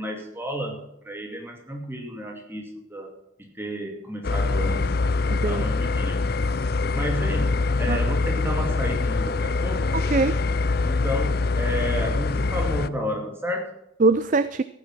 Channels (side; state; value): both; normal; correlation 0.61